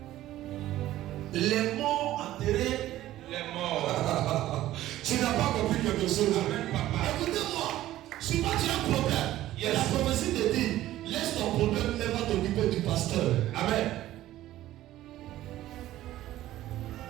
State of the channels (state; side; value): quieter; left; 14.5 dB